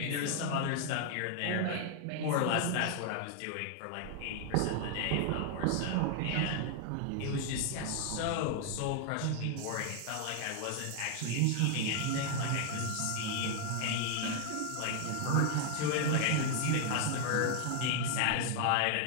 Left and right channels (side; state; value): both; different; correlation 0.00